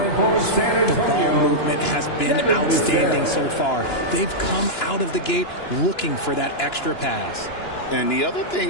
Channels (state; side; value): late; right; 2.9 ms